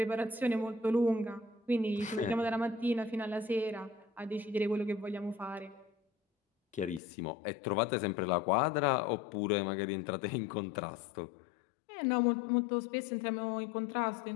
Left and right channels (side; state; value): right; drops out; at 7.0 s